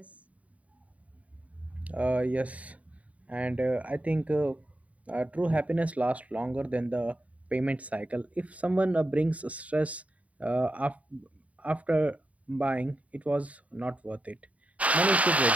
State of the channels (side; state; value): left; late; 0.068 ms